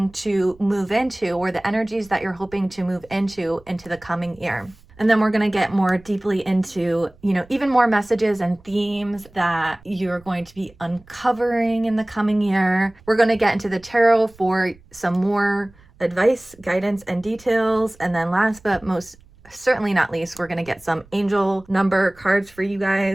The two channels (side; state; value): right; noise; rumble, 26 dB below the sound